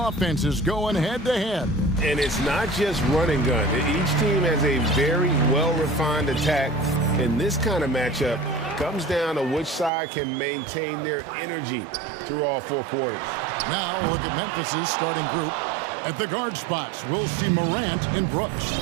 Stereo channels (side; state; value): left; drops out; at 9.9 s